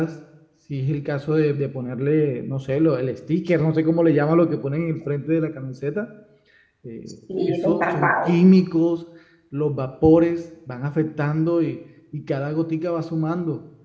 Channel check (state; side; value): identical; both; correlation 1.00